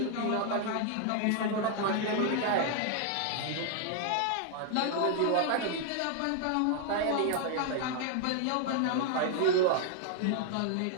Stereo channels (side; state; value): both; different; correlation 0.00